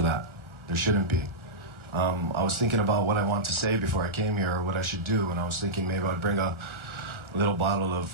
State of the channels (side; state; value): left; late; 1.4 ms